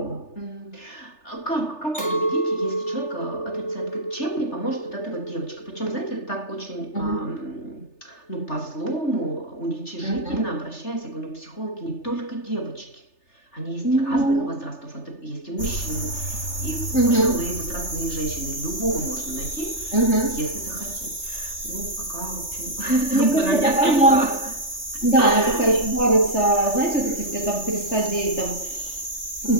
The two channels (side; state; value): right; late; 3.3 ms